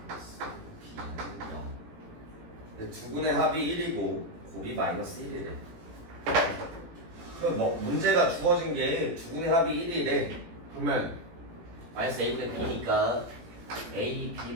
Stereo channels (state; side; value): late; left; 18 ms